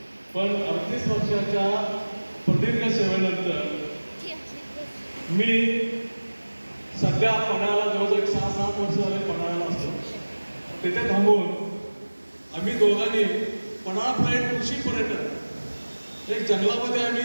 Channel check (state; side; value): inverted; both; correlation -1.00